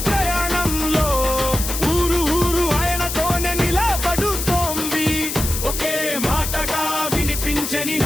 ప్రయాణంలో ఊరు ఊరు ఆయనతోనే నిలబడుతోంది. ఒకే మాటగా వినిపించే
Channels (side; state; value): left; noise; hiss, 4 dB below the sound